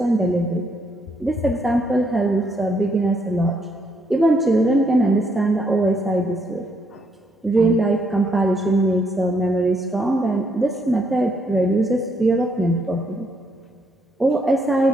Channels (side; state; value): both; normal; correlation 0.73